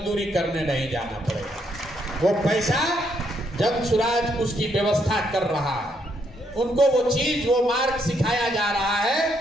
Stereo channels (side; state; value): both; normal; correlation 0.74